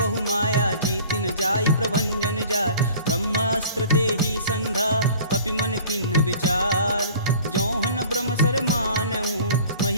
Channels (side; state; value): both; inverted; correlation -0.46